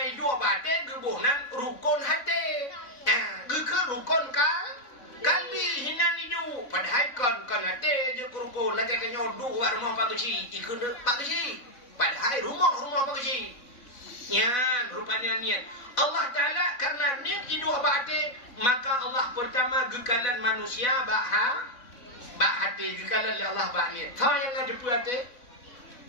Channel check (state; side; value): late; right; 4.0 ms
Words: hidup bate gebunan rukun hati ke rukun kalbi hinan hidup padahal kan hati je rukun lagi kenyo dua rumah bagusi ikut bagusi padahal rumah bagusi ya rupanya niat Allah Ta'ala karena niat hidup ba'ati maka Allah pertama gekalan manusia ba'ati gekalan Allah ba'niat so yang ngadepu hati